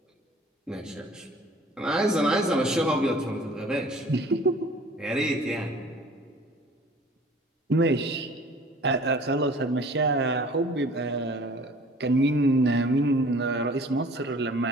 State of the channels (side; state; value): both; normal; correlation 0.49